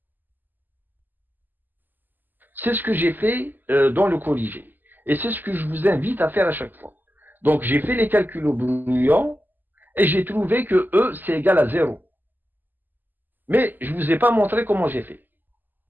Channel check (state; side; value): late; left; 0.088 ms